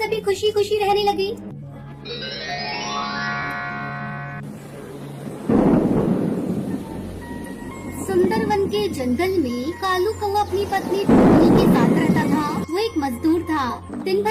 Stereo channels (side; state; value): both; identical; correlation 1.00